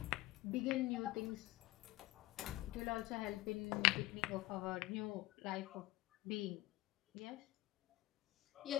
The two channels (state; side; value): quieter; right; 19.0 dB